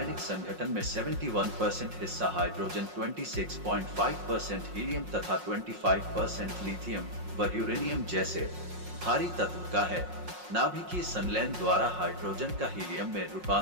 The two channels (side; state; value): left; late; 5.5 ms